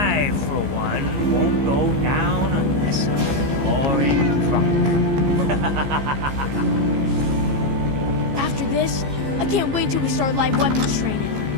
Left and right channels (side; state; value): left; late; 15 ms